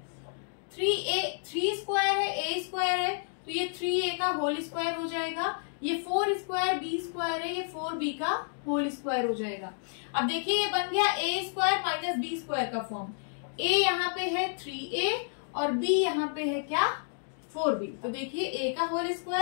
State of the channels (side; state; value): right; silent; digital silence